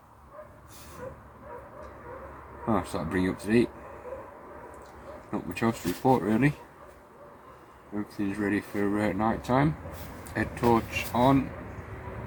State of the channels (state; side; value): identical; both; correlation 1.00